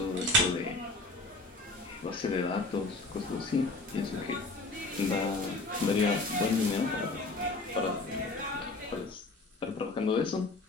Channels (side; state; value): right; quieter; 3.1 dB